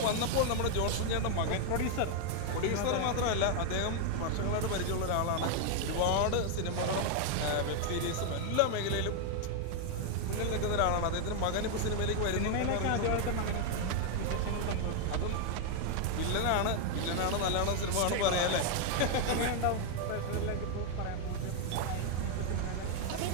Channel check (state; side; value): different; both; correlation 0.00